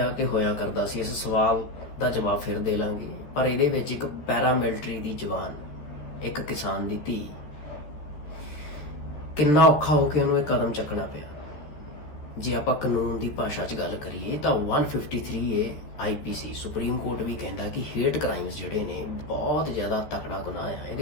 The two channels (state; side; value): late; right; 13 ms